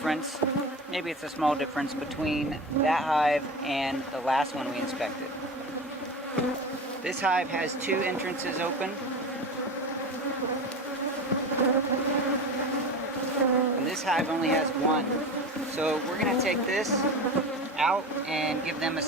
maybe it's a small difference, between that hive and the last one we inspected. This hive has 2 entrances open. And this hive only has 1. So we're going to take this out and give them a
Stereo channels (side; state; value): both; normal; correlation 0.29